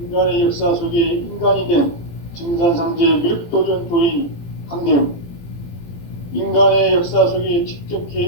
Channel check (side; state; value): right; late; 18 ms